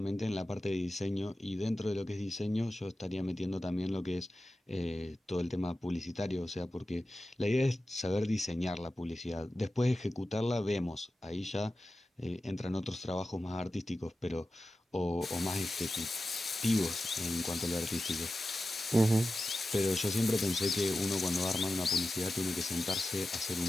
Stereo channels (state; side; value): normal; both; correlation 0.93